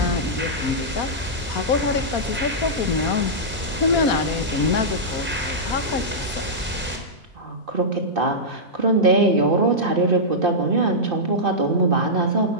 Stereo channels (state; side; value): normal; both; correlation -0.11